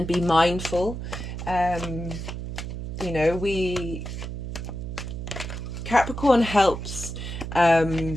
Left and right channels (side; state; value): right; noise; hum, 6 dB below the sound